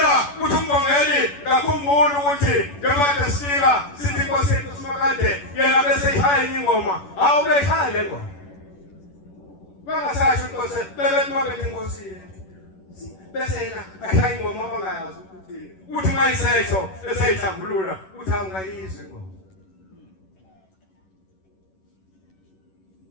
uthi umbongeli ngakhumbula ukuthi njengoba sifika sithi Nkosi yethu simakade yena bese ihaya ingoma awu beshaya le ngoma. Bangasasho Nkosi bebethi makade Nkosi yethu. Bese yena ahaya ingoma abangayazi ukuthi uthi mayisesho eseyihlambulula uthi awungayizwi ingoma.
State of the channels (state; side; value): late; right; 11 ms